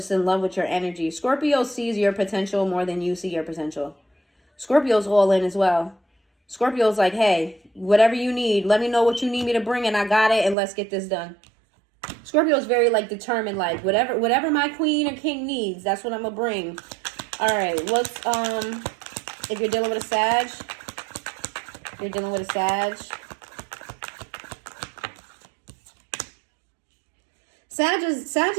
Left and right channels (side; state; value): left; drops out; at 10.6 s